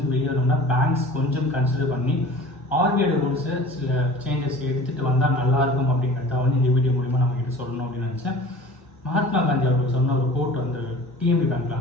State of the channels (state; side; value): normal; both; correlation 0.42